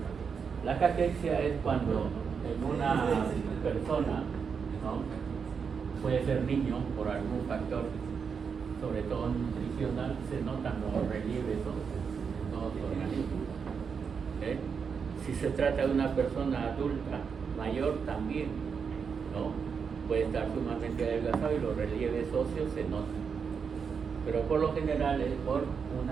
la caquexia es cuando en una persona, ¿no?, puede ser niño por algún factor, sobre todo nutricional, se notan los relieves en todo su organismo. Si se trata de una persona adulta, mayor también, ¿no?, puede estar sumamente adelgazado y los relieves óseos se notan. Pero por lo general es por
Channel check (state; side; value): quieter; left; 6.2 dB